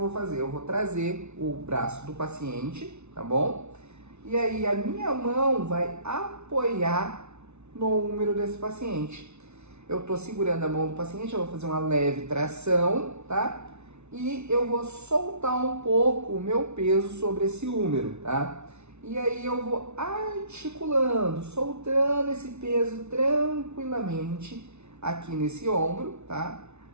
fazer? Eu vou trazer o braço do paciente, tá bom? E aí a minha mão vai apoiar no úmero desse paciente. Eu estou segurando a mão do paciente, eu vou fazer uma leve tração, tá? E eu vou soltar um pouco o meu peso sobre esse úmero, tá? E aí eu vou articulando, soltando esse peso tranquilamente aqui nesse ombro, tá?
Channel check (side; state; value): left; late; 0.81 ms